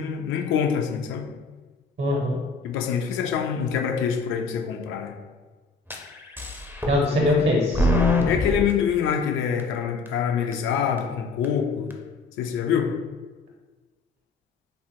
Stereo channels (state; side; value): quieter; right; 4.4 dB